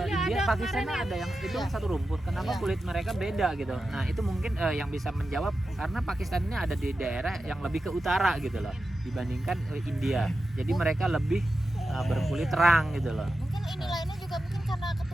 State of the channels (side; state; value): both; normal; correlation 0.91